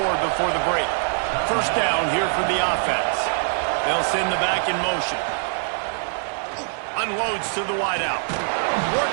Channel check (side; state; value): left; silent; 56 dB below the other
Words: before the break. First down here for the offense. They'll send the back in motion. Unloads to the wideout.